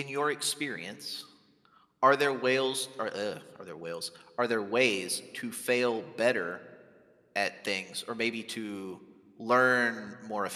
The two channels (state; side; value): identical; both; correlation 1.00